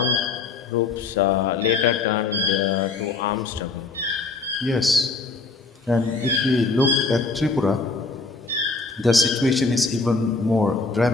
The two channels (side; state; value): right; quieter; 4.1 dB